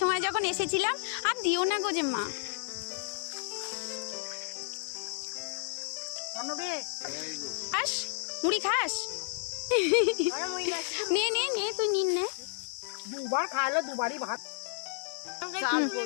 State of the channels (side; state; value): right; silent; digital silence